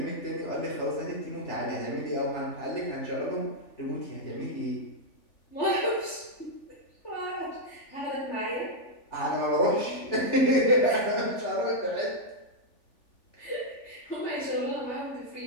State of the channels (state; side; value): late; right; 3.4 ms